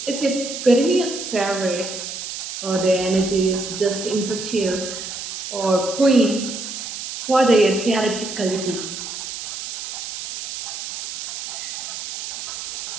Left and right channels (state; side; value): noise; right; hiss, 7 dB below the sound